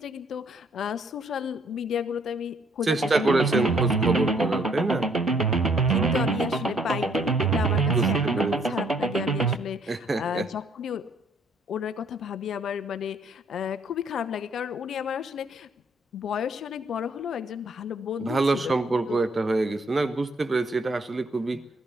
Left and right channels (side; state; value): both; normal; correlation 0.65